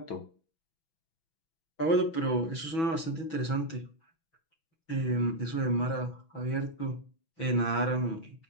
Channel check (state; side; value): late; right; 6.1 ms